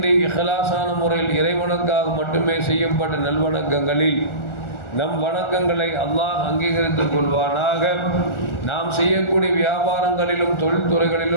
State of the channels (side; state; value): right; late; 1.4 ms